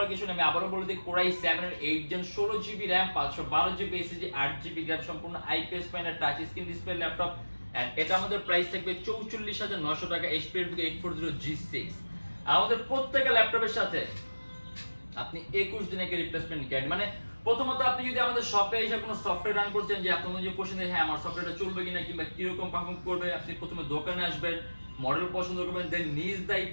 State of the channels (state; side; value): inverted; both; correlation -1.00